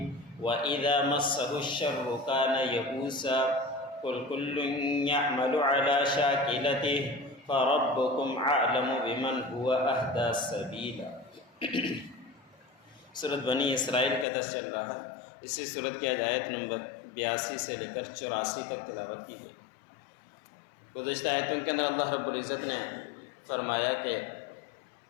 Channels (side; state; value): right; drops out; at 14.2 s